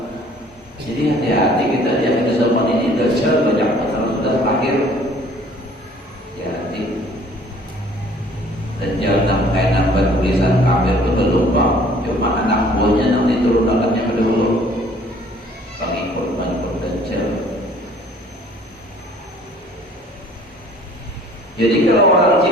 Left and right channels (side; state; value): both; normal; correlation 0.55